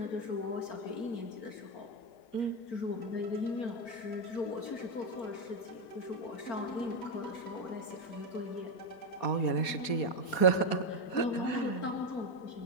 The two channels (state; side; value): late; right; 4.2 ms